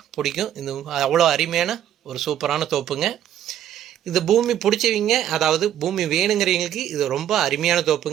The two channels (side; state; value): left; quieter; 11.0 dB